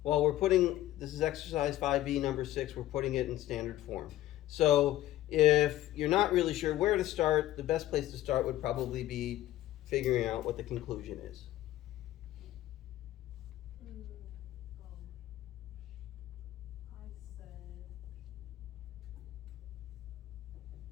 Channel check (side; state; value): right; quieter; 14.5 dB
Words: Well, we're putting, this is exercise 5B, number 6, we're putting it in standard form. So if you're not really sure where to start, the best place to start would probably be figuring out what the conclusion is. I